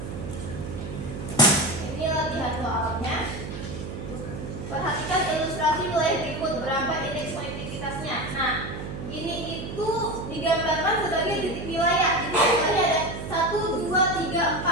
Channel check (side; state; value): right; noise; hum, 8 dB below the sound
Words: Ini latihan soalnya. Perhatikan ilustrasi wilayah berikut, berapa indeks konektivitasnya. Nah, ini itu digambarkan sebagai titik wilayah. Jadi wilayahnya ada 1, 2, 3,